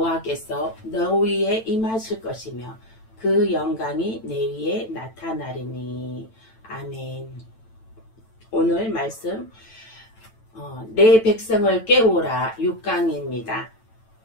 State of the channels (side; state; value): right; late; 9.0 ms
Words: 너 위에 임하실 것이며 그 영광이 내 위에 나타나리니. 아멘. 오늘 말씀 내 백성을 깨우라 6강입니다.